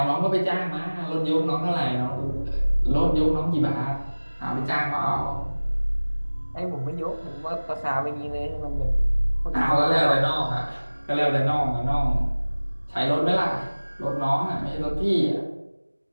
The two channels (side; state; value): both; inverted; correlation -1.00